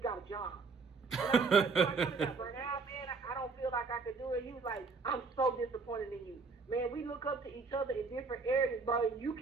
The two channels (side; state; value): left; quieter; 4.5 dB